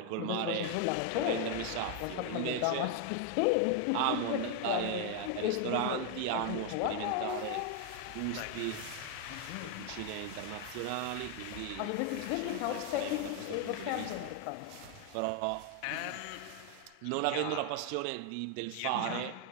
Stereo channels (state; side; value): different; both; correlation 0.01